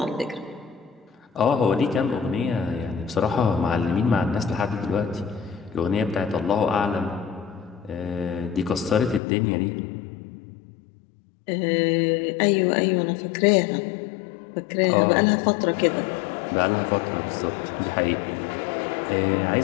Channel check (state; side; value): drops out; right; at 9.2 s